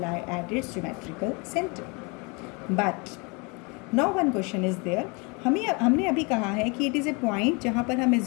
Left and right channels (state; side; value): quieter; right; 30.4 dB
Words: at its geometrical center. But now one question is there. हमने अभी कहा है कि it is a point जहाँ पर हम